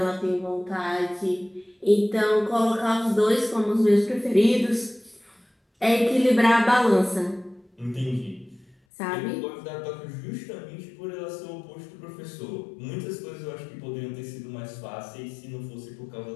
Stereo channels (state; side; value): drops out; right; at 8.8 s